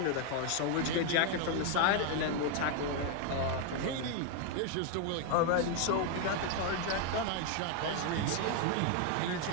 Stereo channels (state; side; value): different; both; correlation 0.01